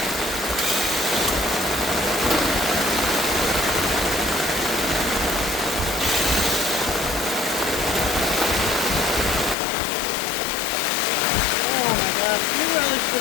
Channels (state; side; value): drops out; right; at 9.6 s